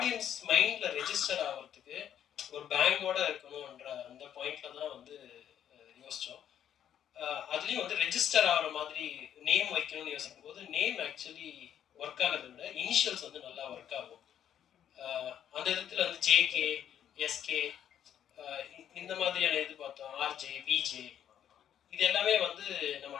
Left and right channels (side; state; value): right; quieter; 9.9 dB